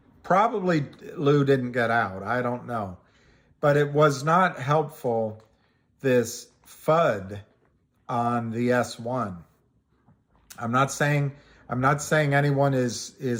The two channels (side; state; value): both; identical; correlation 1.00